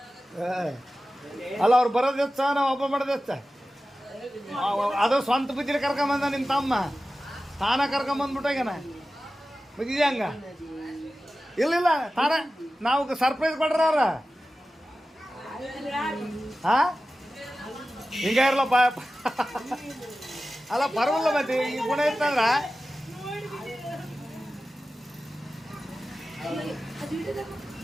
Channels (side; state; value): both; normal; correlation 0.95